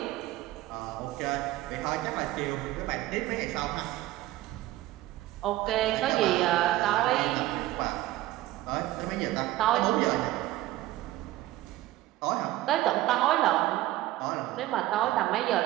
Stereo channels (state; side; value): quieter; left; 16.0 dB